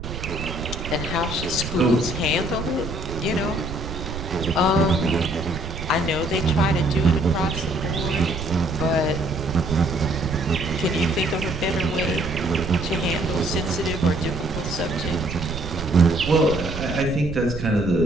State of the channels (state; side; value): noise; right; rumble, 8 dB below the sound